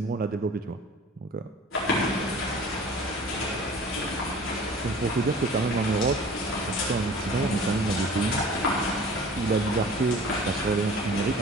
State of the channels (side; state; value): both; normal; correlation 0.44